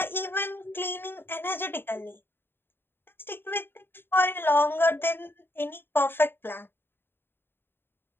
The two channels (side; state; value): right; late; 0.10 ms